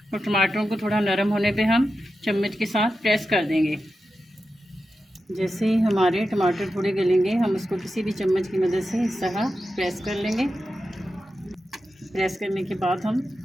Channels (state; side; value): normal; both; correlation 0.90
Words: और टमाटरों को थोड़ा नरम होने पे हम चम्मच के साथ प्रेस कर देंगे। जैसे ही हमारे टमाटर थोड़े गलेंगे, हम उसको किसी भी चम्मच की मदद से इस तरह प्रेस कर लेंगे। प्रेस करने के बाद हम